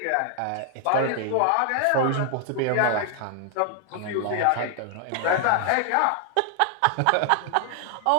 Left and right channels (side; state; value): both; different; correlation 0.00